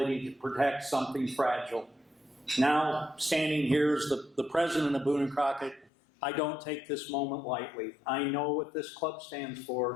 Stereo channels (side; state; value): right; drops out; at 5.9 s